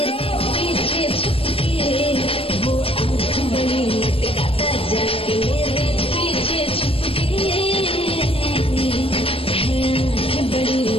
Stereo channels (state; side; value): late; right; 0.27 ms